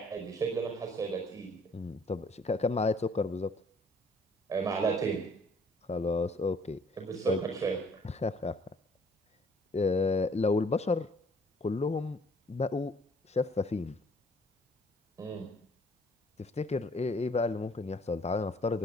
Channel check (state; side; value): normal; both; correlation 0.59